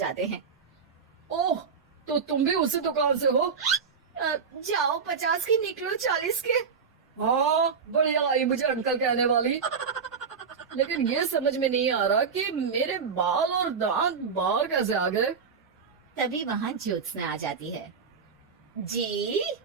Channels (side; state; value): left; quieter; 5.9 dB